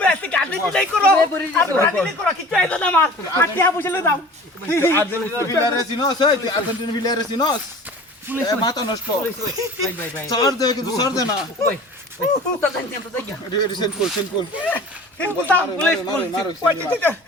আজকে গাড়ি নাই করো আর ব্রাজিল করো কিছু আইতো না মার আটিয়া বুঝলে দাও আর্জেন্টিনা ভিলারে সিনোস এই তুই আর্জেন্টিনা ভিলারে সিনোস মাথা নষ্ট সর দে কিন্তু সর দে না রিসেন্ট কল বুঝতাম পুলিশ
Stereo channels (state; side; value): normal; both; correlation 0.42